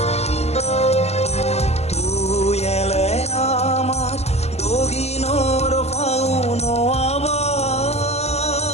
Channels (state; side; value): late; right; 0.31 ms